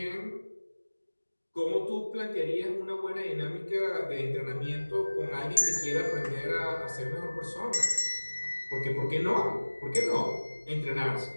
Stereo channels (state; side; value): inverted; both; correlation -1.00